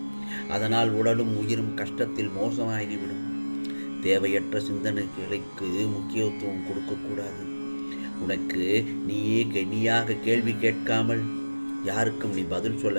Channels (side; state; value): both; inverted; correlation -1.00